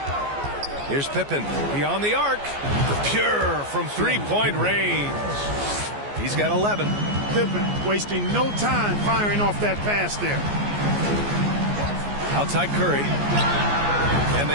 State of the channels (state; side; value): late; left; 14 ms